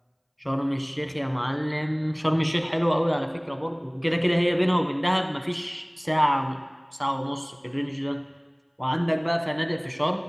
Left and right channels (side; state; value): both; identical; correlation 1.00